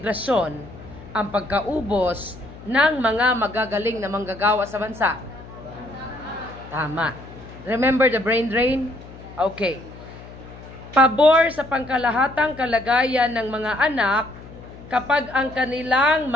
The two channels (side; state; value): left; noise; hum, 17 dB below the sound